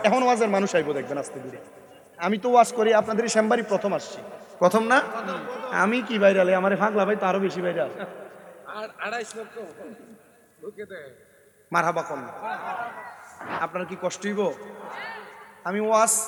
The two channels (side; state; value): both; identical; correlation 1.00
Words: এখন ওয়াজের মানুষ আইবো দেখবেন আস্তে ধীরে। আমি তো ওয়াজ করি, আপনাদের শ্যামবাড়ি প্রথম আসছি। প্রথম না? আমি কি ভাইরাল? আমারে ফাগলা ভাই তো আরো বেশি ভাইরাল। মারহাবা কম। আপনার কি কষ্ট হইব? আমি ওয়াজ